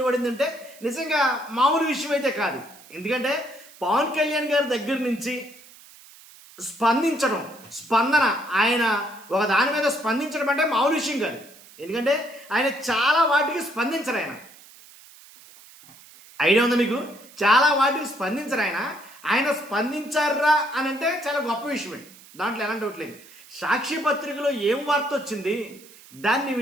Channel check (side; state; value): right; noise; hiss, 22 dB below the sound